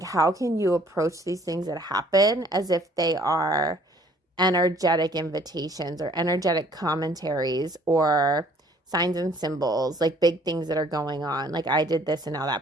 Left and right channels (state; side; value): normal; both; correlation 0.58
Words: how can you approach these things that happen as if they are energetic invitations or energetic commentaries or signs and symbols, like big things that are going on? Like, I did this and now that